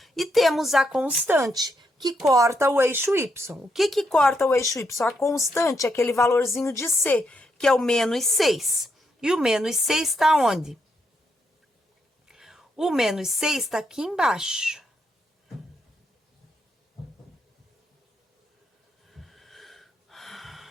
E temos a constante, que corta o eixo y. O que corta o eixo y? A constante é aquele valorzinho de c, que é o menos 6. E o menos 6 está onde? O menos 6 está aqui embaixo.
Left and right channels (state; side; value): normal; both; correlation 0.79